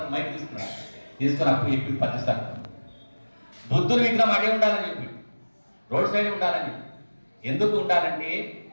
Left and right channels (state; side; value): inverted; both; correlation -1.00